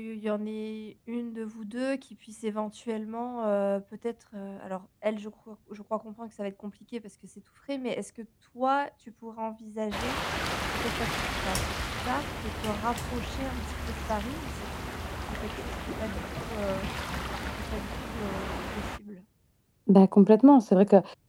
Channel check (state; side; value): identical; both; correlation 1.00